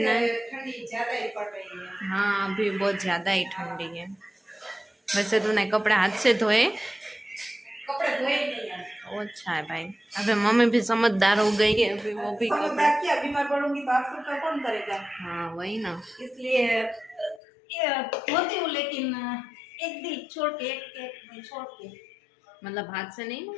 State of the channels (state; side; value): drops out; right; at 17.4 s